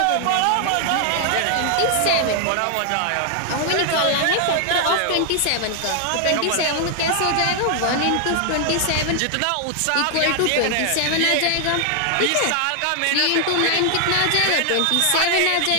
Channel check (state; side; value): different; both; correlation 0.00